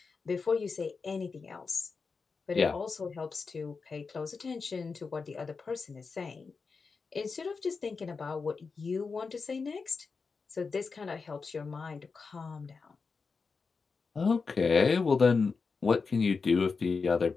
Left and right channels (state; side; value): quieter; right; 4.8 dB